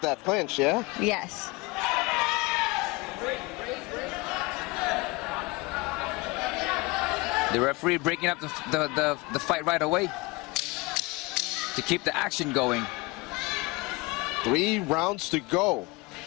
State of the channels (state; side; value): quieter; right; 24.5 dB